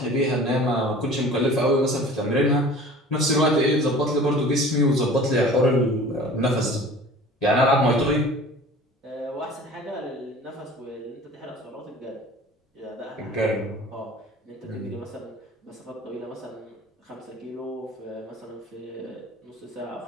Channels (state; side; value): normal; both; correlation 0.44